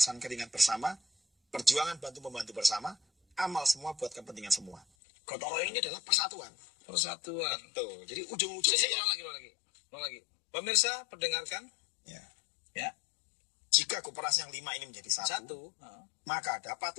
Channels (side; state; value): right; drops out; at 4.9 s